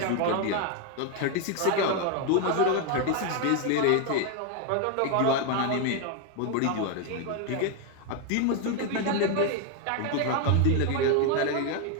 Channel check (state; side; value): different; both; correlation 0.01